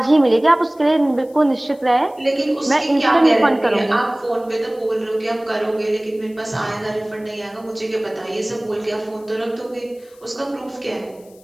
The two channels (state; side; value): noise; left; hiss, 29 dB below the sound